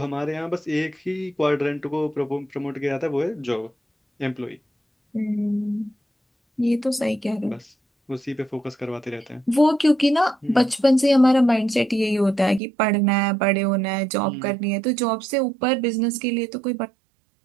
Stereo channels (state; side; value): drops out; left; at 12.6 s